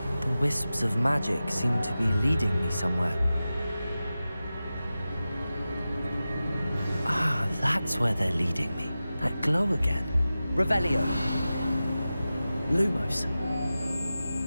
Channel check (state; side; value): inverted; both; correlation -0.94